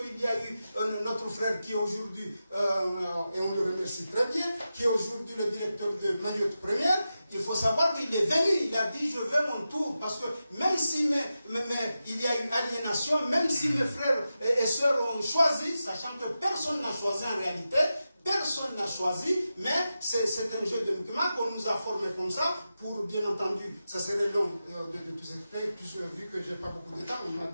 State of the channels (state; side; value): inverted; both; correlation -0.91